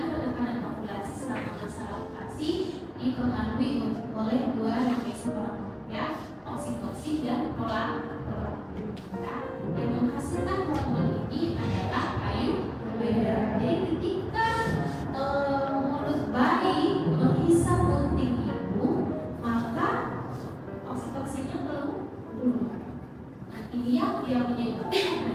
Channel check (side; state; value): both; identical; correlation 1.00